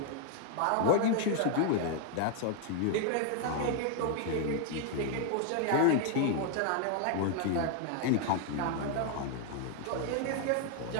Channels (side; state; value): both; different; correlation 0.00